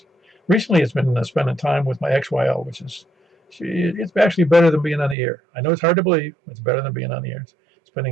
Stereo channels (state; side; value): drops out; left; at 5.2 s